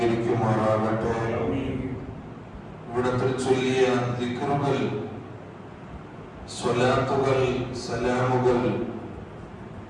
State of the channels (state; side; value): identical; both; correlation 1.00